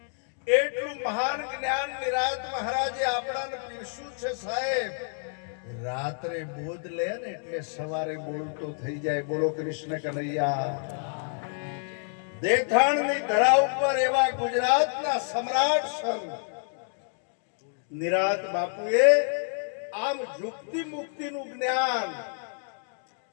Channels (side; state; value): right; silent; 59 dB below the other